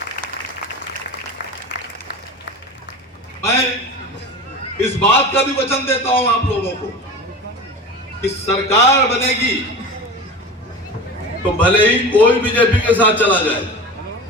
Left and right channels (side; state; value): both; normal; correlation 0.31